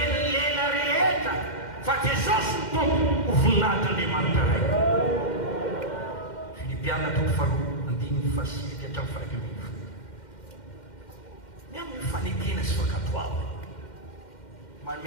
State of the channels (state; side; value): late; right; 2.1 ms